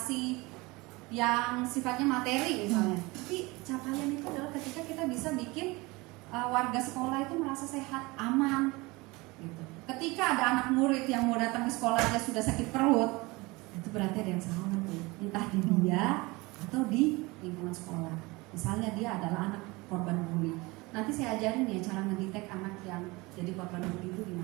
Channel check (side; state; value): left; quieter; 23.6 dB